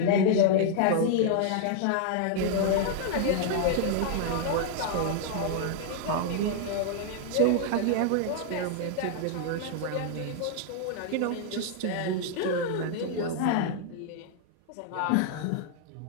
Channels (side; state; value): both; different; correlation -0.01